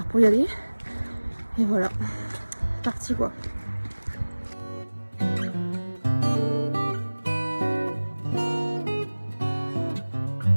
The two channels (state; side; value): inverted; both; correlation -1.00